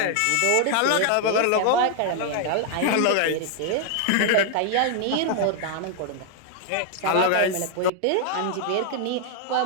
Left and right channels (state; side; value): different; both; correlation 0.00